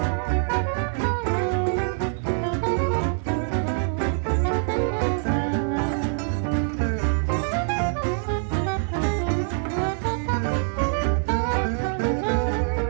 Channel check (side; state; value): left; silent; 62 dB below the other